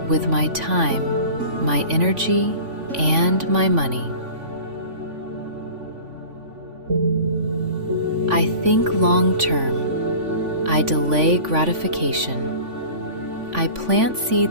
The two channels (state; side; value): late; left; 3.5 ms